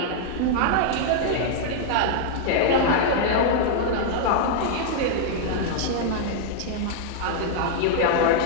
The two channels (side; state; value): both; different; correlation -0.01